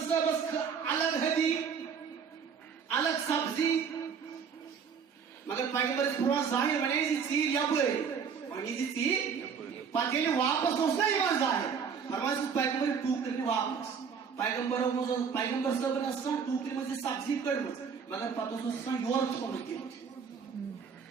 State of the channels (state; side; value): quieter; left; 6.5 dB